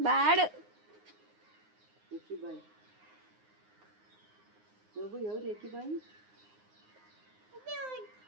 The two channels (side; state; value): left; late; 9.6 ms